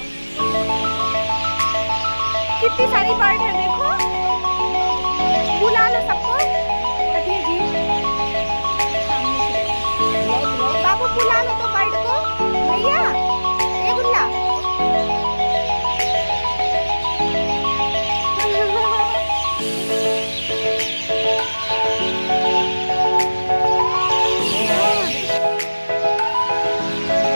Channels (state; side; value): inverted; both; correlation -1.00